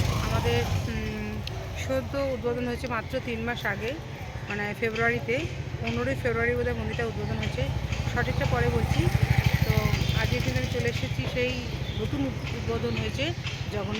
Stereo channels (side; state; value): both; identical; correlation 1.00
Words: আমাদের সদ্য উদ্বোধন হয়েছে মাত্র 3 মাস আগে, মানে ফেব্রুয়ারিতে, 15ই ফেব্রুয়ারি বোধহয় মন্দিরটা উদ্বোধন হয়েছে, সঠিকটা পরে বলছি। তো আজকে কিন্তু আমি চলে এসেছি সেই নতুন উদ্বোধন হয়েছে